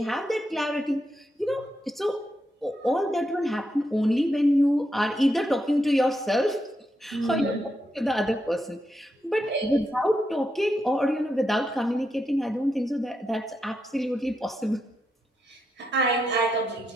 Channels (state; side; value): normal; both; correlation 0.84